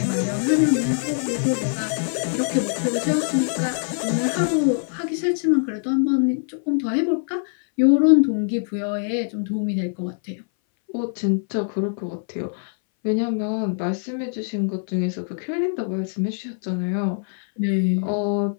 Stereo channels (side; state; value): right; silent; 60 dB below the other